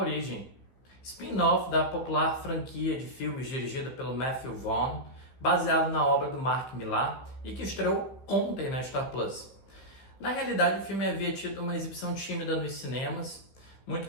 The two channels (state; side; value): late; right; 15 ms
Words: spin-off da popular franquia de filmes dirigida pelo Matthew Vaughn, baseado na obra do Mark Millar e que estreou ontem na Star Plus. Na realidade, o filme havia tido uma exibição tímida nos cinemas, muito